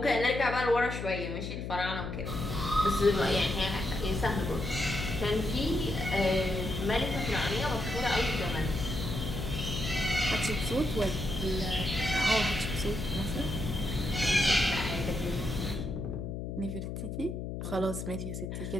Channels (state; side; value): noise; left; hum, 5 dB below the sound